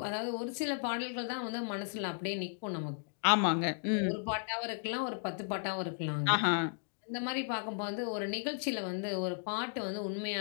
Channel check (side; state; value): right; silent; digital silence